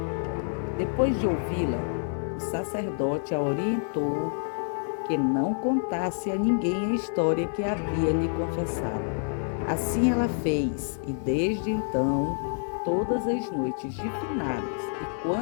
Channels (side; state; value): right; silent; 60 dB below the other